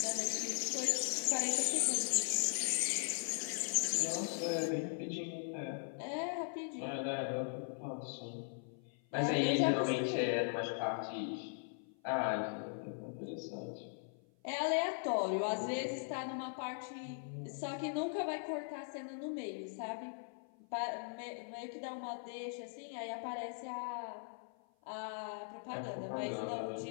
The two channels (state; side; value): silent; right; 51 dB below the other